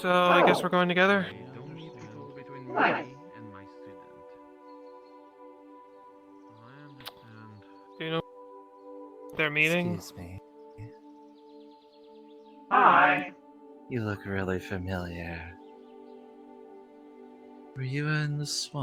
I guess we're going together. Don't need to go between Nice. me and my student. I understand. Do you know their meeting? Excuse me. Hi. You look really familiar. Were you in the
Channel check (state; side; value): identical; both; correlation 1.00